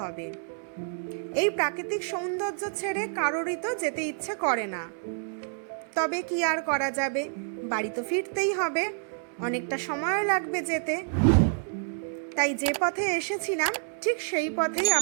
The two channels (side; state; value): left; silent; 59 dB below the other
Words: হবে। এই প্রাকৃতিক সৌন্দর্য ছেড়ে কারোরই তো যেতে ইচ্ছে করে না, তবে কি আর করা যাবে, বাড়ি তো ফিরতেই হবে, অনেকটা সময় লাগবে যেতে। তাই যে পথে এসেছিলাম ঠিক সেই পথেই